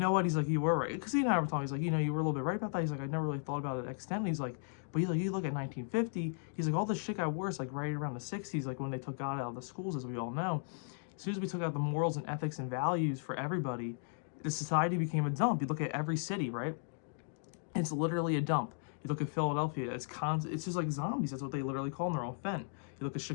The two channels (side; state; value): right; silent; digital silence